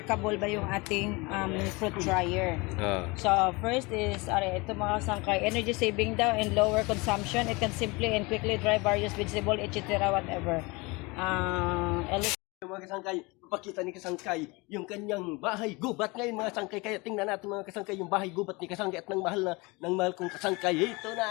ba yung ating fruit dryer. So first is, ito mga sangkay, energy saving daw and lower consumption. It can simply and quickly dry various vegetable, etc. whatever. Mga kasangkay, papakita ni kasangkay yung kanyang bahay gubat ngayon mga sangkay. Kaya tingnan natin mga kasangkay yung bahay gubat ni kasangkay at ng mahal kong kasangkay. Ito na!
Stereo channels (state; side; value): quieter; right; 25.5 dB